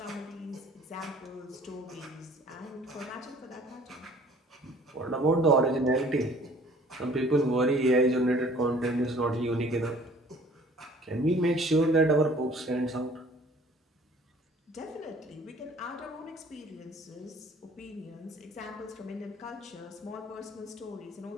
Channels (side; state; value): both; normal; correlation 0.53